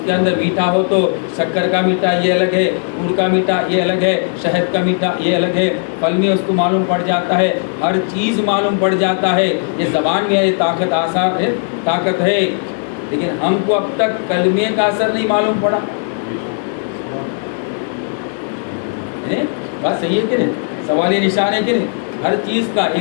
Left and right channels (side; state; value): right; silent; 61 dB below the other